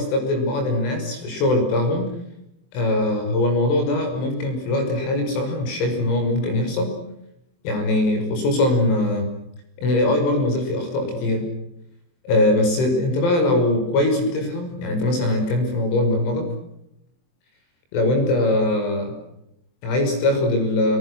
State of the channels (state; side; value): late; right; 23 ms